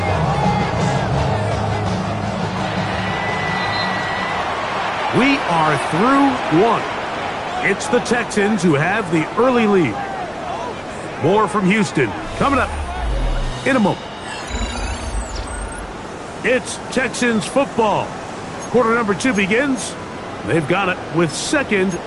We are through 1. It's the Texans who have the early lead. More from Houston coming up in a moment. It's Texans football. Quarter number 2 begins. They've got it with 2nd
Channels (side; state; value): both; identical; correlation 1.00